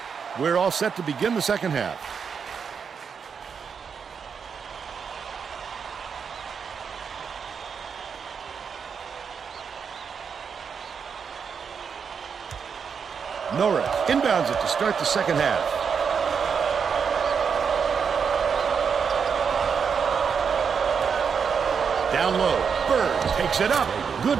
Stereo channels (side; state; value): left; quieter; 6.4 dB